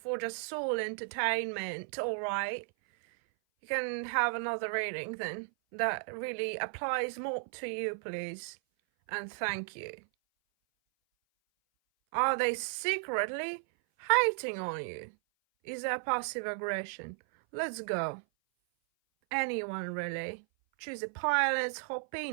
just soul entertainment, alright? You can have another reading then. That really applies more to you, please. And thank you. Are they secretly hating on you? Is that passive aggression? Let's go. Anyone really. Choose a pile, let's hop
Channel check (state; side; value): silent; left; 55 dB below the other